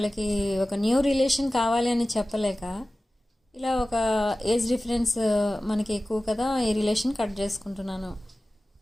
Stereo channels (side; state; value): both; normal; correlation 0.96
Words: ఒక న్యూ రిలేషన్ కావాలి అని చెప్పలేక ఇలా ఒక ఏజ్ డిఫరెన్స్ మనకి ఎక్కువ కదా, ఈ రిలేషన్ కట్ చేసుకుంటున్నాను